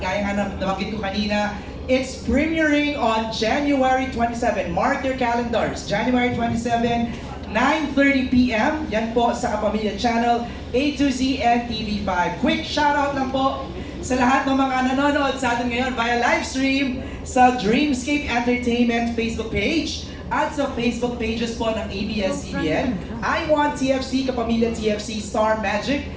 nga nabanggit ko kanina, it's premiering on January 27. Mark your calendars, January 27, 9:30 p.m. Yan po sa Kapamilya Channel A to Z and TV5. Quick shoutout lang po sa lahat ng mga nanonood sa atin ngayon via live stream sa Dreamscape Entertainment Facebook page at sa Facebook pages po ng ABS-CBN, I Want TFC, Kapamilya TFC, Star Magic,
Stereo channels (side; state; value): both; identical; correlation 1.00